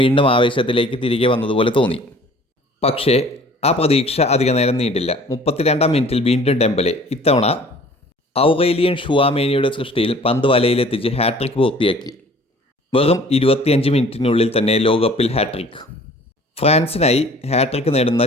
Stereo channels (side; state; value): both; normal; correlation 0.50